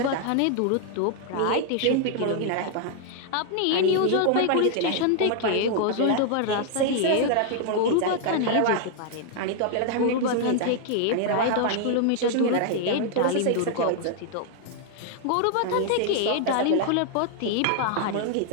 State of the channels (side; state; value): both; different; correlation 0.00